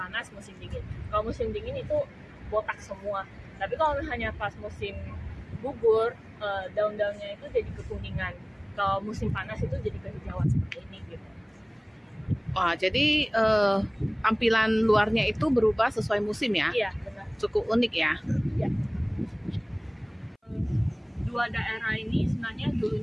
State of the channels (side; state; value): both; identical; correlation 1.00